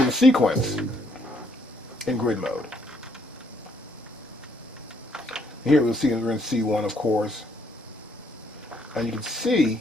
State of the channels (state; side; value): normal; both; correlation 0.69